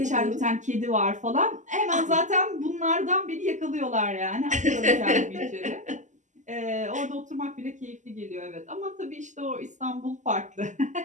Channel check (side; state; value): left; late; 0.35 ms